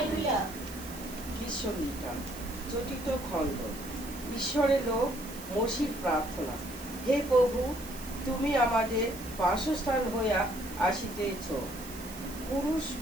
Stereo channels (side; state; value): right; noise; hiss, 15 dB below the sound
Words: Gita চতুর্থ খণ্ড। ঈশ্বরের লোক মসির প্রার্থনা। হে প্রভু, তুমি আমাদের বাসস্থান হইয়া আসিতেছ,